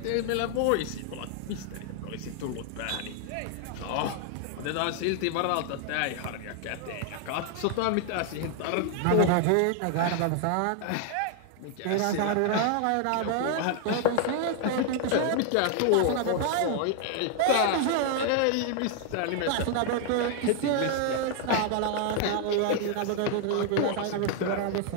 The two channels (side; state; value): both; different; correlation 0.00